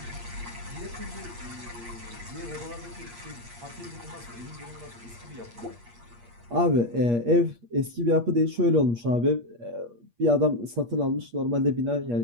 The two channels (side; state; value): left; late; 8.5 ms